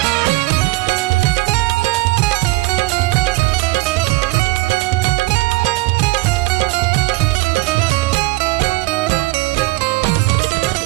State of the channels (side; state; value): left; quieter; 21.1 dB